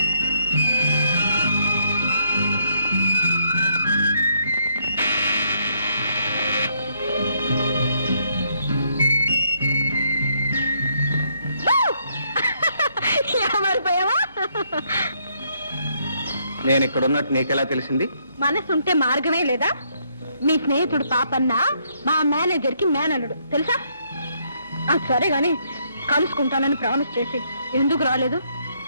నేను ఇక్కడ ఉన్నట్టు నీకెలా తెలిసింది? మనసుంటే మార్గమే లేదా? మీ స్నేహితుడు పాపన్న మా మేనేజర్ కి మేనల్లుడు తెలుసా? సరే గాని కలుసుకుంటానని ప్రామిస్ చేసి ఎందుకు రాలేదు?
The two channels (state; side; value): inverted; both; correlation -0.72